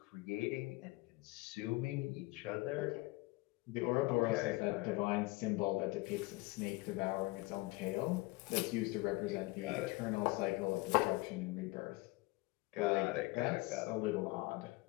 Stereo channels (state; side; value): quieter; right; 22.7 dB